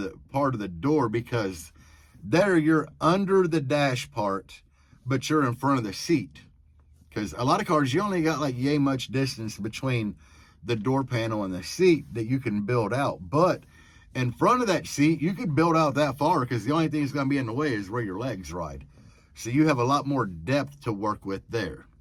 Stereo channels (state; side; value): identical; both; correlation 1.00